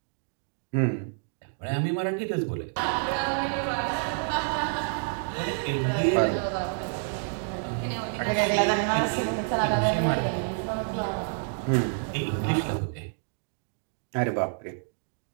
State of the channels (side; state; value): left; silent; digital silence